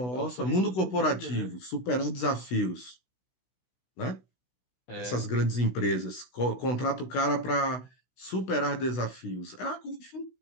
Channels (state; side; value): late; right; 16 ms